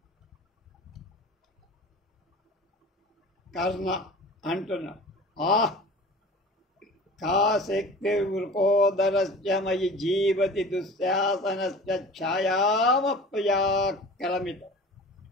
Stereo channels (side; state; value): both; normal; correlation 0.40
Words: కర్ణ అంటున్నాడు, కా శక్తి వృకోదరస్య మయి జీవతి దుశ్శాసనస్య ఛాయామప్యాక్రమిత.